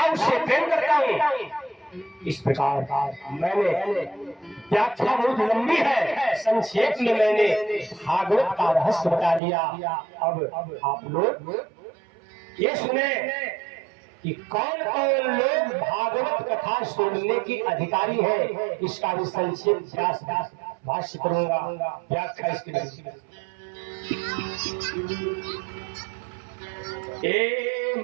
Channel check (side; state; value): left; drops out; at 9.4 s